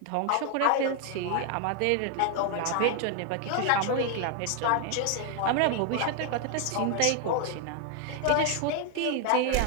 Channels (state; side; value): different; both; correlation 0.00